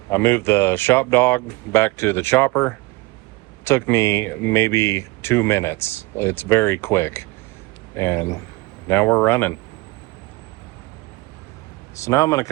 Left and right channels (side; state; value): left; quieter; 22.7 dB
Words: I moved the Shop Dog back to the chopper. Took me maybe 2 minutes. It's very quick. And now we're running. So now I'm going to